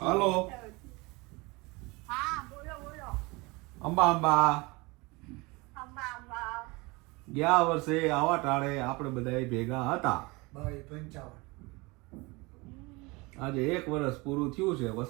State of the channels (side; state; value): left; quieter; 25.0 dB